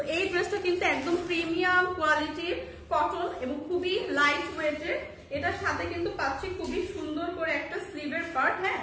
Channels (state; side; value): identical; both; correlation 1.00